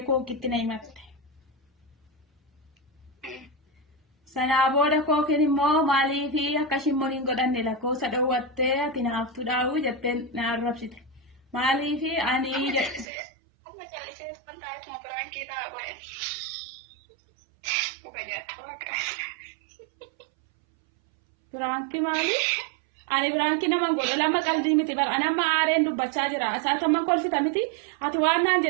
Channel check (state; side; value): drops out; left; at 13.1 s